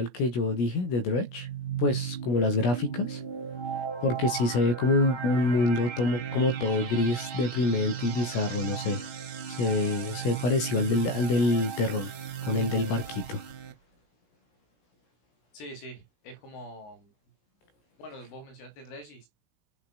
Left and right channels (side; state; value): right; late; 17 ms